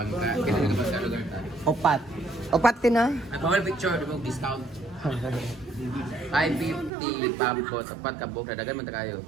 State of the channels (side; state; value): left; drops out; at 6.9 s